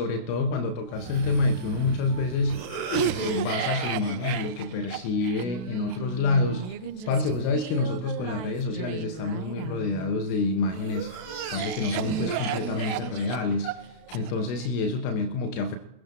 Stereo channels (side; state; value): right; late; 32 ms